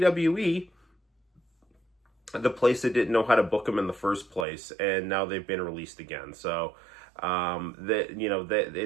the place that didn't know how to book them in the first place. And now they've been released again. So,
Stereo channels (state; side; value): drops out; left; at 4.5 s